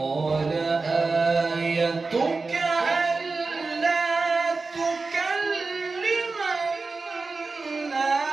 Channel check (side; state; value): left; quieter; 4.0 dB